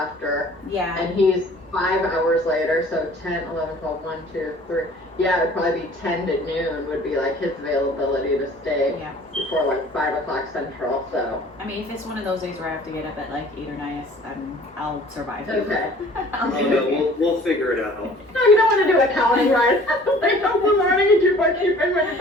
Yeah. and he's 5 hours later, so 10, 11, 12, 1, 2, 3. Yeah, it'd probably be 10 to noon would be like his availability to stay Yeah. before like 5 o'clock central, so. I mean, if it's one of those days where I have to get up at like 8 or 9, I'll survive. Okay. I'll Oh, be no, okay. we'll figure it out. No, you don't want to do accounting, right? Like, no learning and do bookkeeping when you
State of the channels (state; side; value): normal; both; correlation 0.50